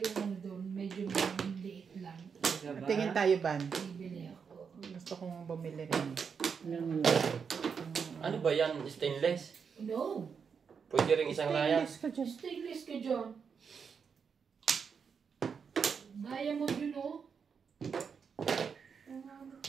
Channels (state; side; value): quieter; left; 6.3 dB